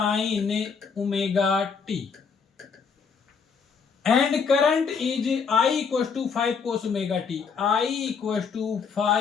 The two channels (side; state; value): right; quieter; 5.8 dB